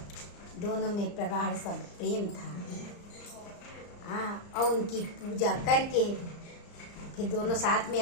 दोनों में प्रगाढ़ सब प्रेम था। और उनकी पूजा करके फिर दोनों साथ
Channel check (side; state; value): right; late; 34 ms